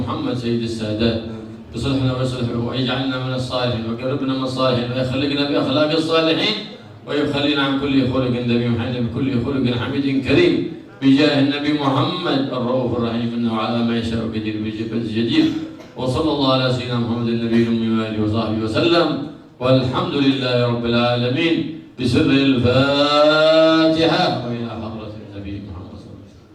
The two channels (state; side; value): identical; both; correlation 1.00